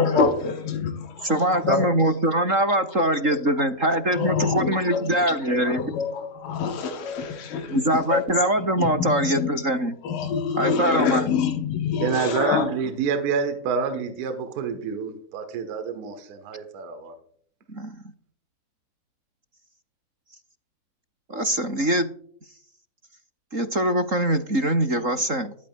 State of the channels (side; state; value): left; late; 3.8 ms